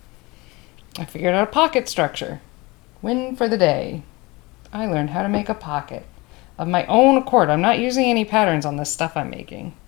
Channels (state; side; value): quieter; right; 23.8 dB